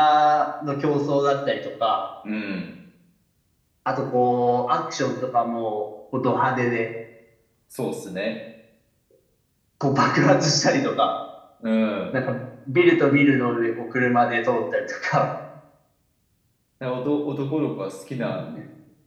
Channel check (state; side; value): identical; both; correlation 1.00